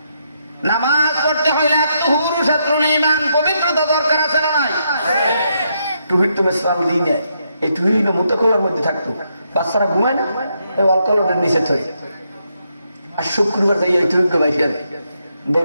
নামাজ পড়তে হইলে আত-তুহুরু শাত্রুল ঈমান, পবিত্রতা দরকার আছে না নাই? টুহির তো ইসলাম দিই নেয়, এই টুহিল মুতাকলার মধ্যে থাকতো, বাচ্চারা ঘুমায় না, এই অলকলের নিচে থই। আর শুক্রবার যাই এই টুহিকে বাইকে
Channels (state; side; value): inverted; both; correlation -0.79